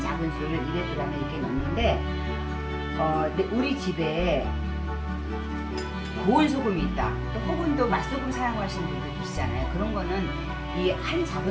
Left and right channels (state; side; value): identical; both; correlation 1.00